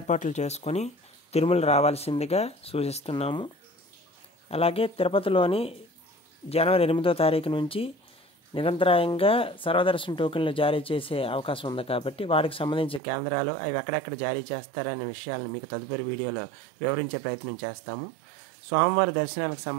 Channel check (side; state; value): left; drops out; at 13.0 s